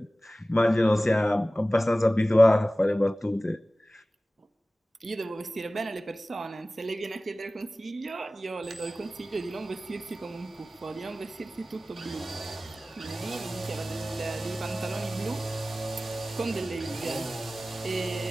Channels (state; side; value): normal; both; correlation 0.97